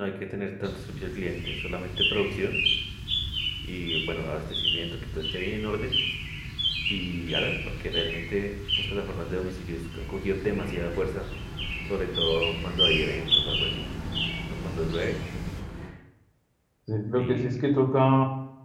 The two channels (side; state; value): both; identical; correlation 1.00